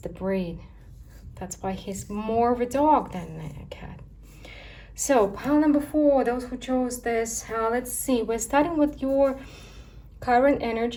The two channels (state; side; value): identical; both; correlation 1.00